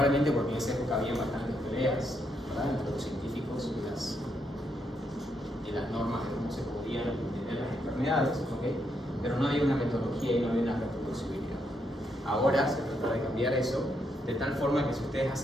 porque en esa época había bastantes peleas, ¿verdad?, entre los científicos y las normas de cómo se podían entender las enfermedades, ¿okay? Pero no había una metodología y no había una reproducibilidad. Ahora se trata de cambiar eso de tal forma que si ustedes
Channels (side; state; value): both; normal; correlation 0.78